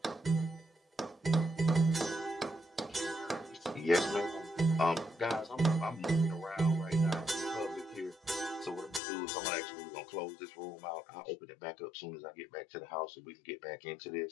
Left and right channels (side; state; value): right; drops out; at 9.0 s